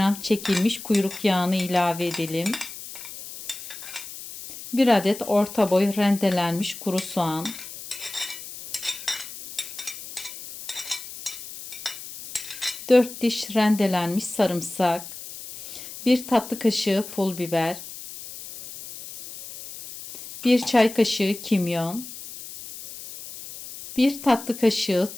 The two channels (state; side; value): noise; left; hiss, 12 dB below the sound